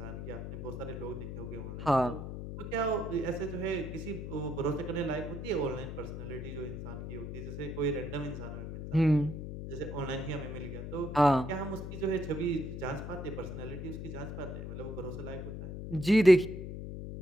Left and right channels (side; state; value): left; noise; hum, 7 dB below the sound